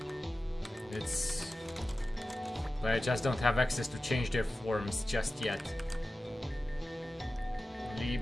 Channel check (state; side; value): normal; both; correlation 0.95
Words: But I just don't have access to change their forms just yet.